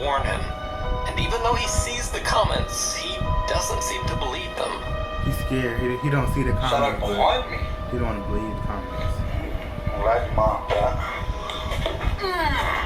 warn him. And even though he sees the comments, he doesn't seem to believe them. He's scared. He don't see the comments, but he don't want to believe the comments.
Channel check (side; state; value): both; identical; correlation 1.00